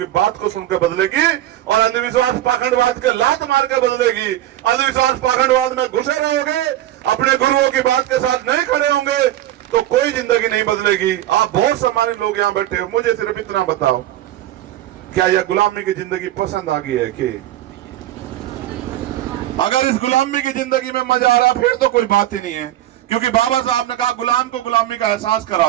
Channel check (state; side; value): quieter; left; 13.5 dB